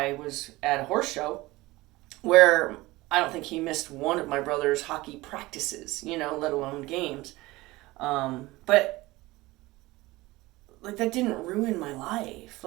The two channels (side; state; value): left; quieter; 19.9 dB